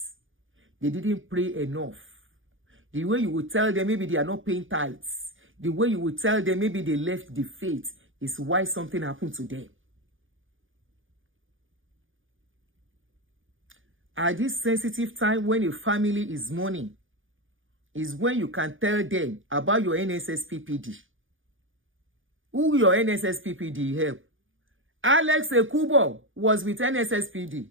they didn't pray enough. The way you would tell them maybe they are not paying tithes, the way you would tell them maybe they left the faith is why something happened to them. At this sensitive time when a family is mourning, is when you can tell them about your NSSPPD. Who your NSSPPD help? Alex Ekubo was with NSSPD.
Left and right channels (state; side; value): late; left; 0.57 ms